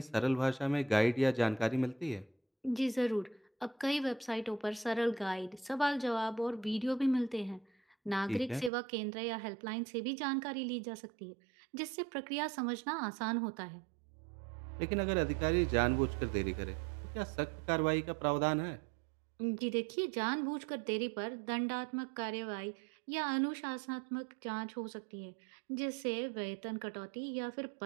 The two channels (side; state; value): left; drops out; at 8.7 s